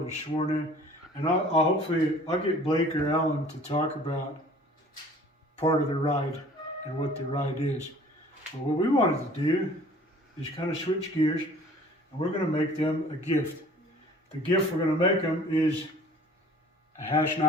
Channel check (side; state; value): both; normal; correlation 0.50